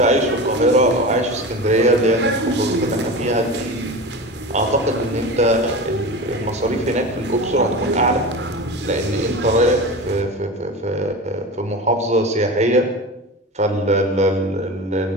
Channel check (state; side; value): normal; both; correlation 0.29